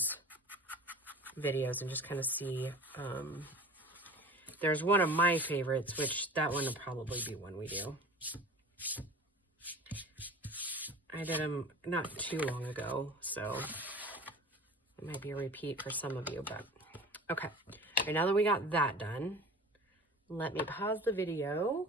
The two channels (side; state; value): both; normal; correlation 0.39